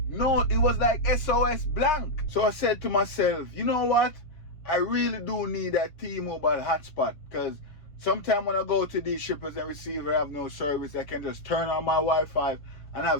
No, it was like SOS blank. So I said to myself, you know what? I really do need that T-Mobile hotspot, because sometimes when I go to these shippers and receiver have no service, I can just turn on my Wi-Fi and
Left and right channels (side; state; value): right; late; 6.6 ms